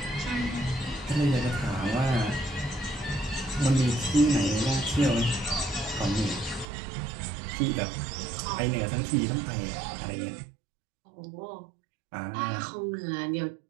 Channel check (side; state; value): left; drops out; at 6.7 s